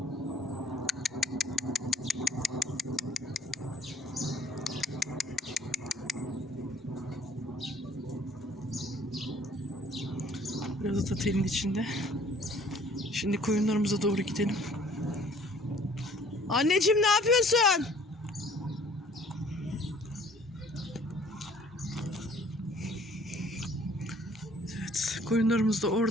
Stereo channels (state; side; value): normal; both; correlation 0.56